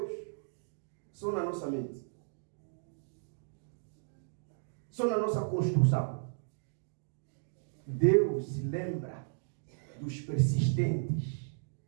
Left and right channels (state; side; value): silent; left; digital silence